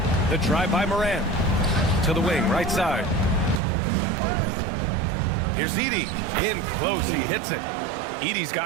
The drive by Moran. To the wing, right side. Here's Edey. In close, he hits it. Edey's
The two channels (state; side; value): drops out; left; at 3.6 s